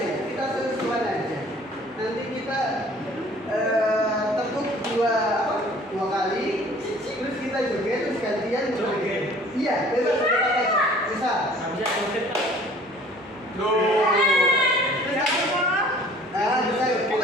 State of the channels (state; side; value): normal; both; correlation 0.52